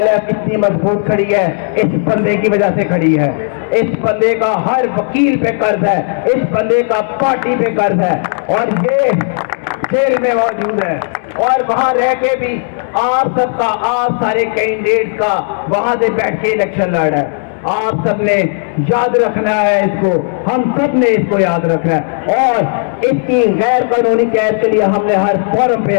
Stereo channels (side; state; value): right; silent; digital silence